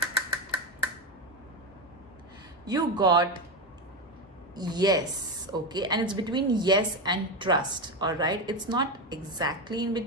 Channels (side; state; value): both; normal; correlation 0.14